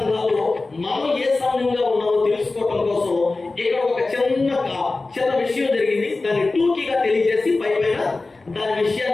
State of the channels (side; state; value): right; quieter; 3.4 dB